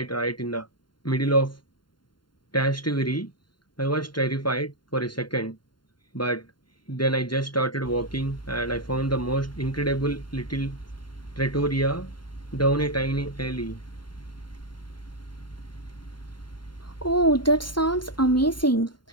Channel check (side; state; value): right; late; 0.72 ms